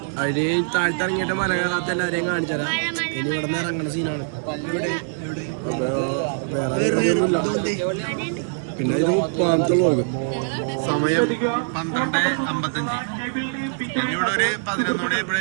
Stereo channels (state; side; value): silent; left; digital silence